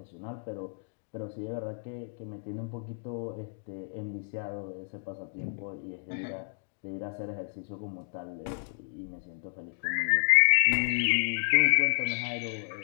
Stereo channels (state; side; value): silent; right; digital silence